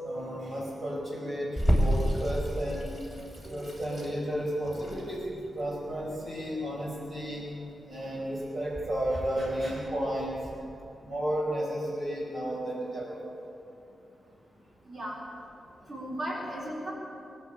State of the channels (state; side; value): normal; both; correlation 0.91